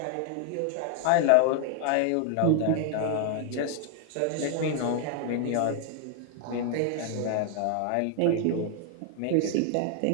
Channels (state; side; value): different; both; correlation 0.00